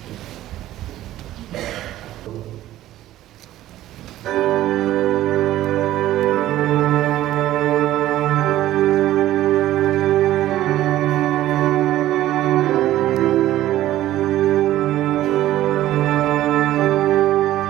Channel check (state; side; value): quieter; left; 14.2 dB